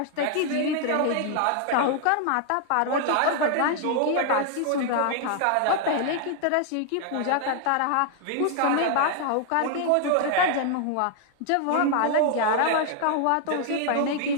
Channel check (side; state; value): both; different; correlation 0.00